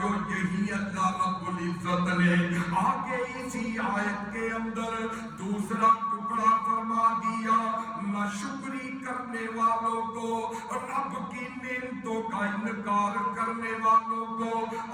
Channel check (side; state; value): both; identical; correlation 1.00